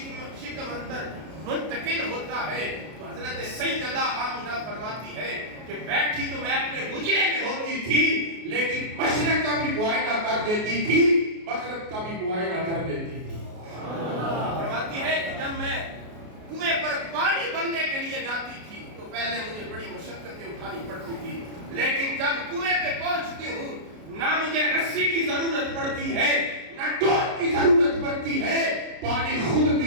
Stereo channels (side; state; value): left; late; 33 ms